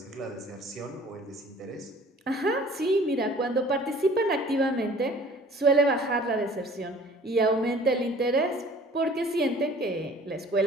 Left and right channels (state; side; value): normal; both; correlation 0.50